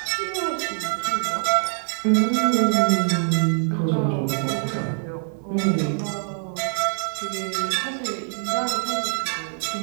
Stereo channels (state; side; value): silent; left; 63 dB below the other